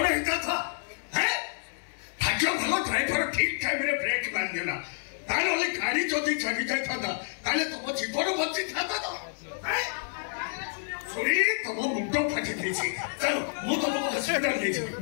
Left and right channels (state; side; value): silent; right; digital silence